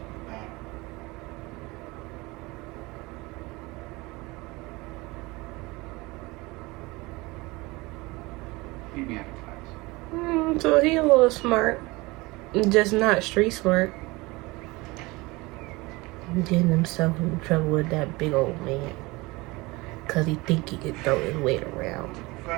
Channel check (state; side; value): quieter; left; 23.0 dB